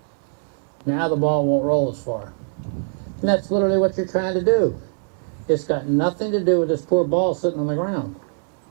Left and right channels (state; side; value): silent; left; digital silence